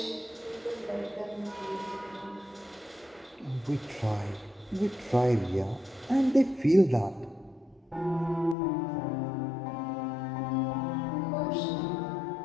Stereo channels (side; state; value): right; drops out; at 8.6 s